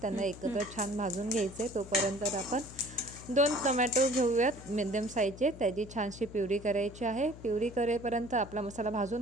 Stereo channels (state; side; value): noise; left; hum, 15 dB below the sound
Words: त्यांना एकत्र छान भाजून घ्यायचे. तोपर्यंत आपण 2 टोमॅटो घेऊयात मिडियम साईजचे. त्याची छानशी प्युरी करायची आहे. प्युरी करेपर्यंत आपला मसाला